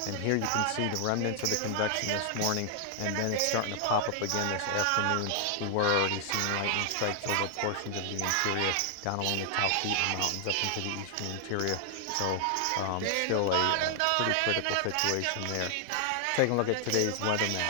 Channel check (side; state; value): both; different; correlation 0.00